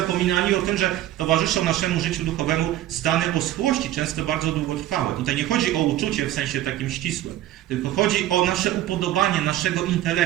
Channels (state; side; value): quieter; left; 13.5 dB